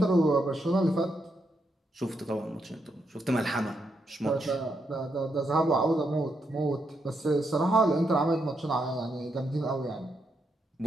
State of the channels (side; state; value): both; normal; correlation 0.81